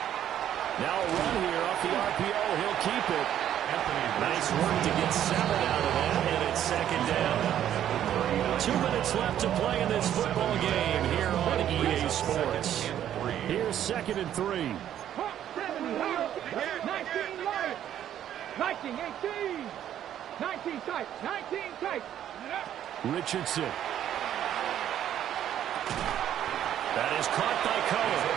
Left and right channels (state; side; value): quieter; left; 10.8 dB